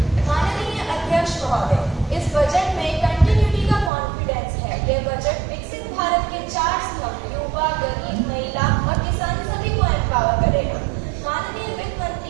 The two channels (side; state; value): left; drops out; at 3.9 s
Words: माननीय अध्यक्ष महोदय, इस budget में continuity का confidence है। यह budget विकसित भारत के 4 स्तंभ युवा, गरीब, महिला और किसान सभी को एम्पावर करेगा। माननीय वित्त